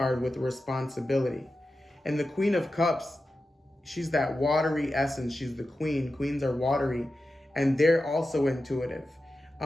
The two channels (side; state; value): both; normal; correlation 0.92